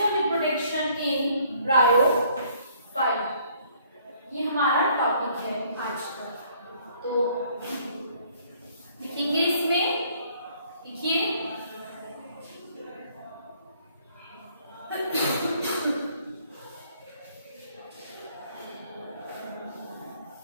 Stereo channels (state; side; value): inverted; both; correlation -0.62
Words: reproduction in bryophyta, ये हमारा टॉपिक है आज का। तो लिखेंगे इसमें, लिखिए